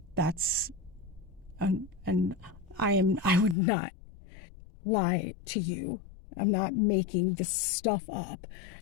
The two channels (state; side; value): drops out; right; at 3.6 s